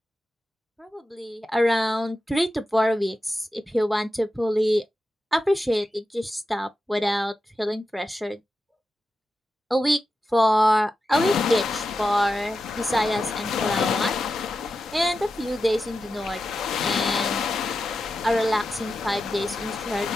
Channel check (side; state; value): both; normal; correlation 0.91